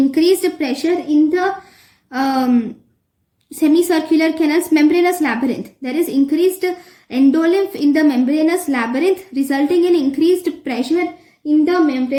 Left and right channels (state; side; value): identical; both; correlation 1.00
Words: pressure in the semicircular canal's membranous labyrinth. There is increased endolymph in the membranous labyrinth, resulting in increased pressure in the